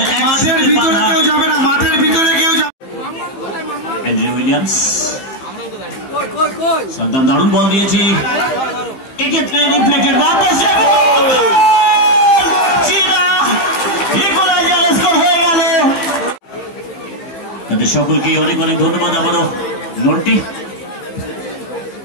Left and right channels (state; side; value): late; right; 15 ms